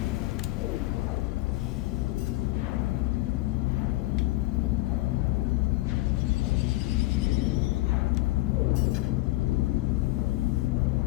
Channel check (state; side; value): quieter; right; 19.2 dB